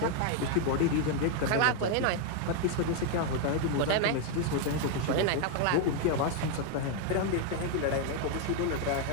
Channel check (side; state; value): both; different; correlation 0.01